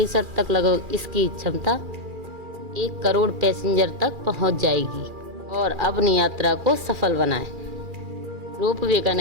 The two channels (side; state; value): left; late; 2.4 ms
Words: तक लगभग इसकी क्षमता 1 करोड़ पैसेंजर तक पहुंच जाएगी। और अपनी यात्रा को सफल बनाएं। रोपवे का